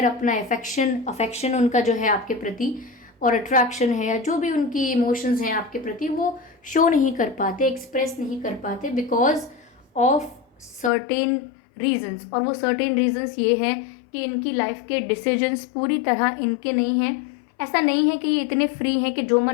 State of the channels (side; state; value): right; drops out; at 10.9 s